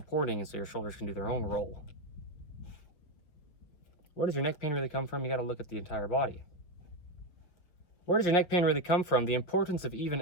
and so your shoulders can do their own roll. Where does your neck pain really come from? You got to look at the entire body. Where does your neck pain really come from? The importance of even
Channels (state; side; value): late; right; 6.0 ms